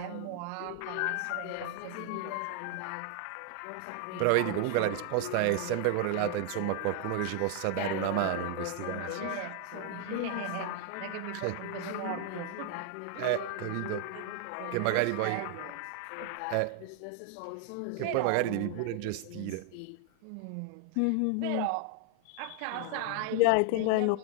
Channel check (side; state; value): both; different; correlation 0.00